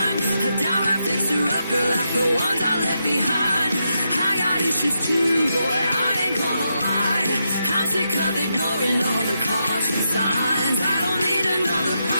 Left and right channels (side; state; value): both; inverted; correlation -0.84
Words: A downright fixer-upper like the ones I left behind. I got issues too, boy, I ain't gonna lie. I'm sick of ignoring all the caution signs. I don't need another